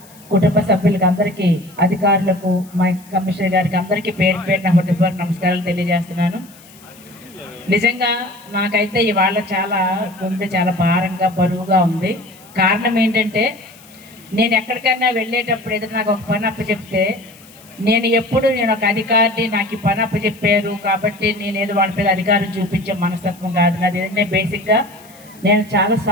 కుటుంబ సభ్యులకు అందరికీ, అధికారులకు, మా కమిషనర్ గారికి అందరికీ పేరు నా హృదయపూర్వక నమస్కారాలు తెలియజేస్తున్నాను. నిజంగా నాకైతే ఇవాళ గుండె చాలా భారంగా బరువుగా ఉంది. కారణం ఏంటంటే నేను ఎక్కడికైనా వెళ్ళేటప్పుడు ఏదైనా నాకు ఒక పని అప్పచెప్తే నేను ఒక అధికారిని, నాకు ఈ పని అప్పచెప్పారు కాబట్టి నేను ఏదో వాళ్ళ మీద అధికారం చూపించే మనస్తత్వం కాదు నాది. ఏదంటే బేసిక్గా నేను చాలా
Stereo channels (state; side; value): noise; left; hiss, 24 dB below the sound